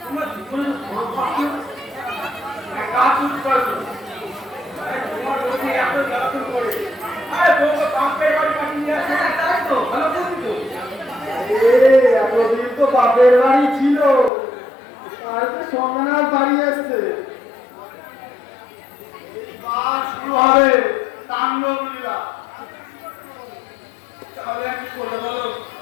তোমার জীবনে কাজ শুরু করছো তোমার বলছি এত জ্বালাতন করে আরে বউকে বাপের বাড়ি পাঠিয়ে নিয়ে আসছে তাই তো ভালো করবি তো এতদিন তো বাপের বাড়ি ছিল আর তো সন্ন্যাস বাড়ি আসছে এবার শুরু হবে তাণ্ডব লীলা তাহলে আর কি করবে বলো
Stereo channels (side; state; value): right; drops out; at 14.3 s